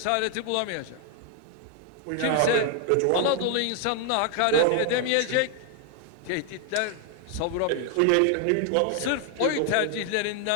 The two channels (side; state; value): both; different; correlation 0.00